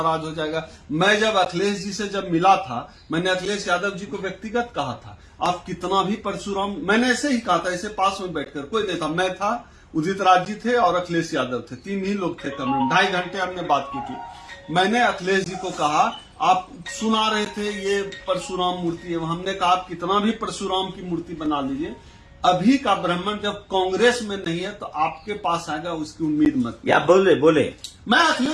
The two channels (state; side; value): identical; both; correlation 1.00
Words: हो जाएगा। मैं जब अखिलेश जी से जब मिला था, मैंने अखिलेश यादव जी को व्यक्तिगत कहा था, आप कितना भी परशुराम, मैंने ऐसे ही कहा था, ऐसे पास में बैठकर, कोई नहीं था, मैं था, उदित राज जी थे और अखिलेश यादव थे, 3 ही लोग थे कमरे में। 2.5 घंटे हमने बात की थी। मैंने अखिलेश जी को कहा, आप सुना रहे थे ये परशुराम मूर्ति है, हमने कहा आप कितना भी परशुराम की मूर्ति बना लीजिए, अभी का ब्राह्मण जब कांग्रेस में नहीं है तो आपके पास आएगा, उसकी उम्मीद मत। या बोले मैं